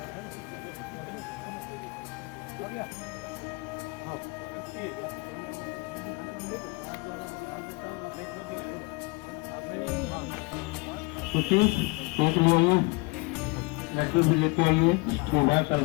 एक ले आइए, लड्डू भी लेते आइए, सुबह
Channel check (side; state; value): right; quieter; 27.4 dB